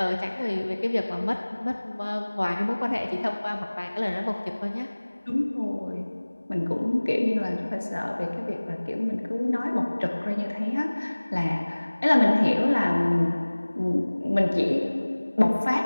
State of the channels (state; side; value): inverted; both; correlation -1.00